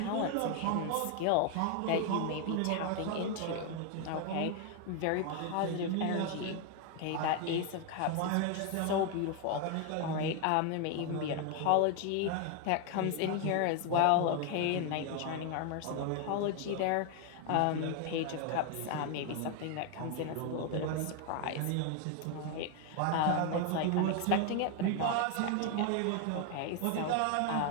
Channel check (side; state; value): both; different; correlation 0.01